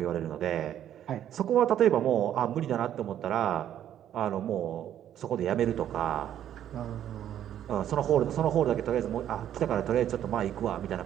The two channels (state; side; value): quieter; left; 10.8 dB